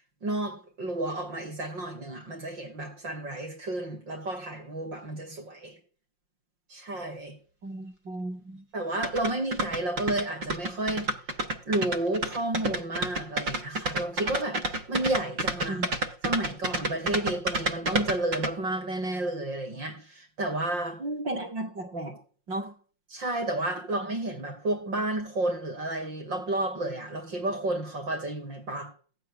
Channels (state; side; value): late; left; 5.6 ms